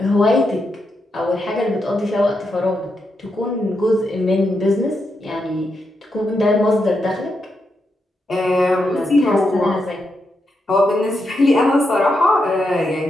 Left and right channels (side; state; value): both; normal; correlation 0.84